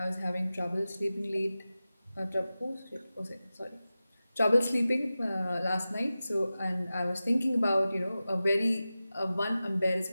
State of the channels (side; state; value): both; inverted; correlation -0.95